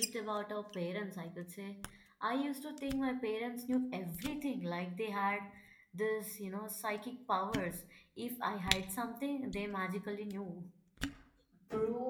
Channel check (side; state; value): both; identical; correlation 1.00